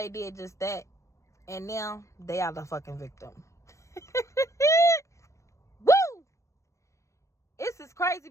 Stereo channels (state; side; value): late; right; 0.15 ms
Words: did just that. And now they are the fucking victim. Woo! This is crazy